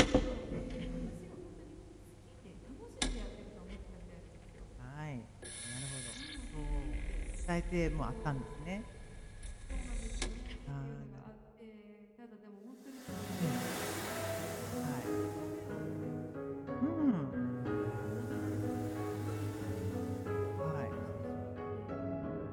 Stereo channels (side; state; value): both; identical; correlation 1.00